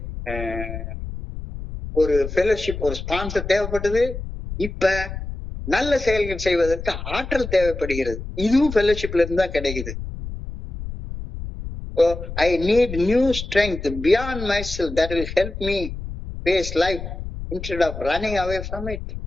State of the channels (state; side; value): noise; left; rumble, 8 dB below the sound